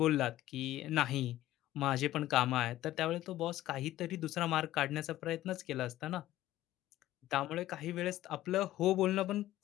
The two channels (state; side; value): quieter; right; 14.8 dB